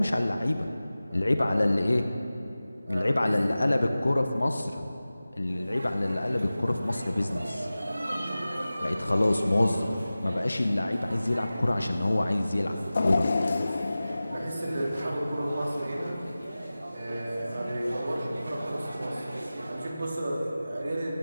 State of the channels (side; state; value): both; inverted; correlation -0.97